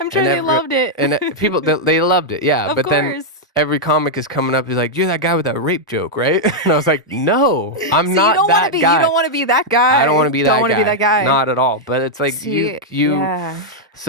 sure and they loved it. people they loved it, yeah. Of But then course. every comic is coming up, he's like, "You're that guy with that rape joke, right?" And I was like, "No, I'm See, you not don't want to that be. You guy. don't want to be that guy. I don't want to be Don't that want to be that guy, guy. not at all." But it's like See, you. yeah,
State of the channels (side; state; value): both; normal; correlation -0.03